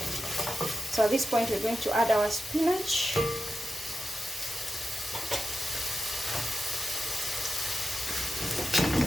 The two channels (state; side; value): normal; both; correlation 0.91